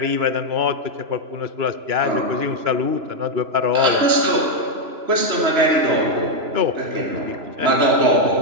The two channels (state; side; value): late; left; 3.0 ms